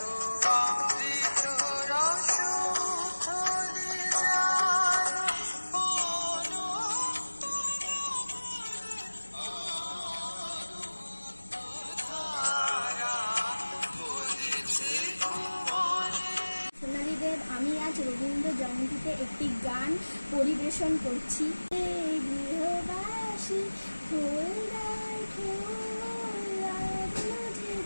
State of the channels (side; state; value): both; inverted; correlation -1.00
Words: আমি আজ রবীন্দ্র জয়ন্তীতে একটি গান পরিবেশন করছি। গৃহবাসী